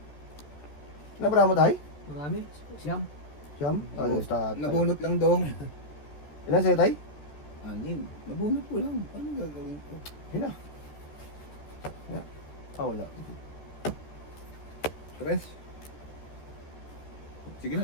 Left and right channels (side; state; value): right; late; 14 ms